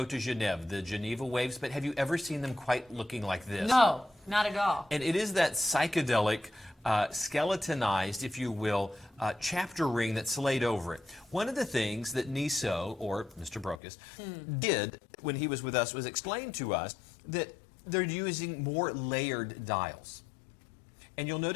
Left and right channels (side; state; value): right; drops out; at 13.8 s